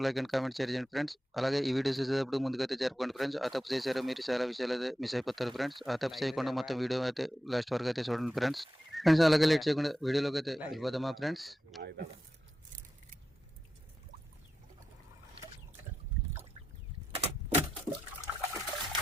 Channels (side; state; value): both; normal; correlation 0.89